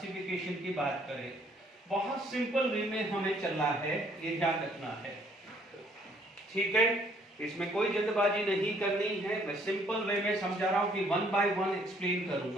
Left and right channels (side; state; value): both; normal; correlation 0.63